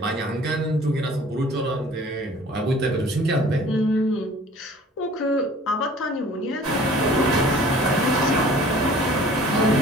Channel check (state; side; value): normal; both; correlation 0.49